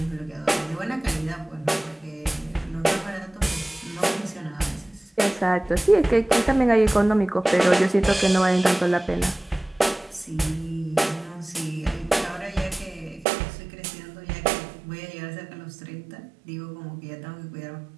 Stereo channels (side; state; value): left; drops out; at 13.2 s